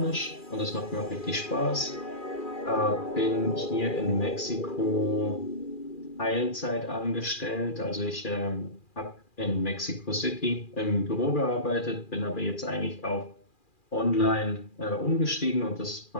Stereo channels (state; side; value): late; right; 2.4 ms